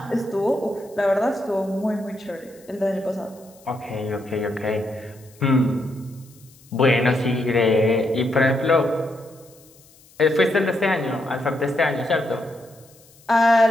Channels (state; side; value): noise; left; hiss, 27 dB below the sound